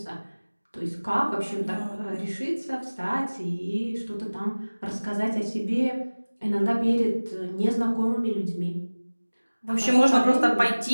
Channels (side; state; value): both; inverted; correlation -1.00